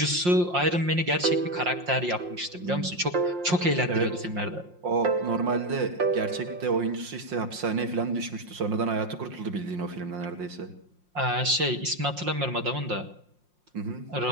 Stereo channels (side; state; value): left; late; 5.6 ms